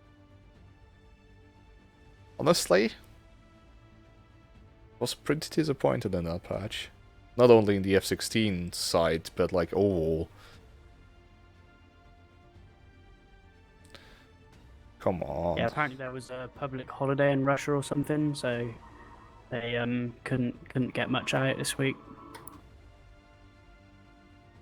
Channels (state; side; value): identical; both; correlation 1.00